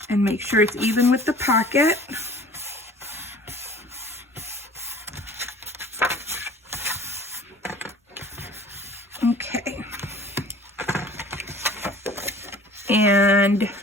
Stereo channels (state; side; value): normal; both; correlation 0.47